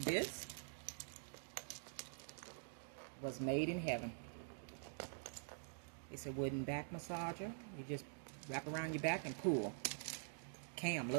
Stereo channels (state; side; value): silent; left; digital silence